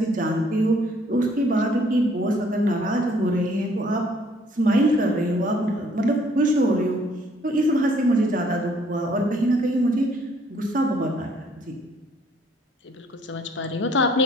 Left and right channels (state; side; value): normal; both; correlation 0.62